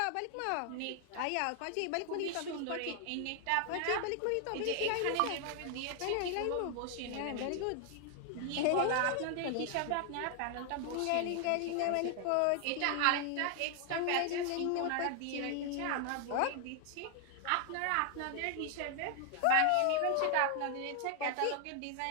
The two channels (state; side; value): different; both; correlation 0.00